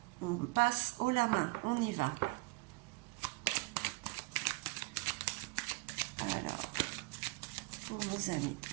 on passe haut la main, on y va. Alors, pour vos amis,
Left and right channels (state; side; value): quieter; left; 26.2 dB